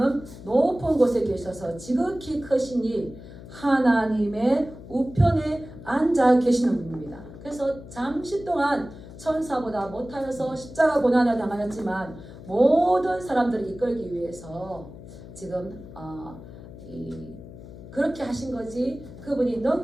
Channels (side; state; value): left; noise; hum, 15 dB below the sound